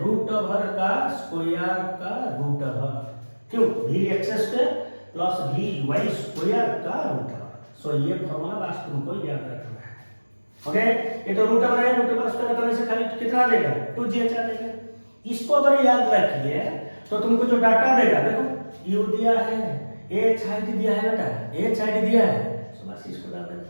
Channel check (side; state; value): both; inverted; correlation -1.00